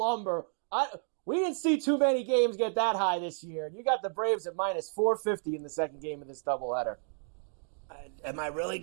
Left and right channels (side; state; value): left; silent; 57 dB below the other